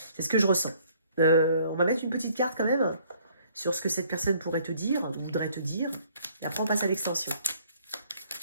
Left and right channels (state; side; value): inverted; both; correlation -0.61